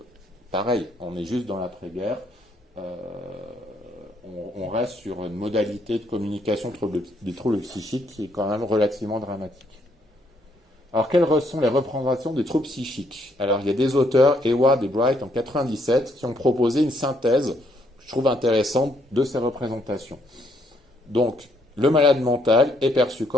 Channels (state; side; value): normal; both; correlation 0.71